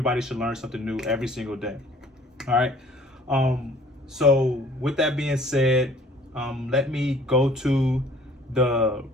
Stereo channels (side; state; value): both; normal; correlation 0.54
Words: should learn something new every single day. All right. So with that being said, let me go to the